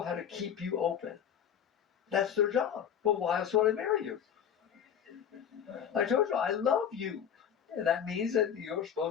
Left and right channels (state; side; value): quieter; right; 8.6 dB